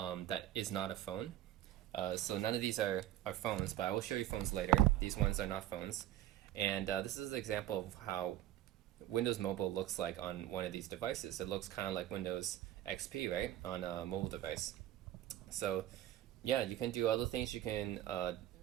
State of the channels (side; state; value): left; quieter; 12.8 dB